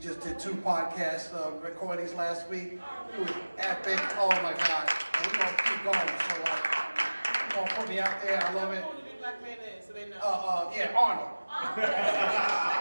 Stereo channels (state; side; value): inverted; both; correlation -1.00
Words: just did 2 podcasts recorded parties last week. It was epic. Oh my God. And we're gonna keep going. So like, come on, put me out there. I love it. Who the big black man is, so they know. Yeah, Arnold.